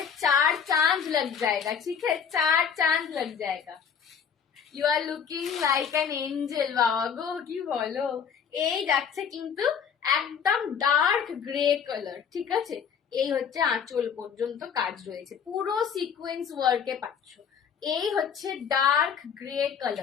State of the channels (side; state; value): right; quieter; 7.2 dB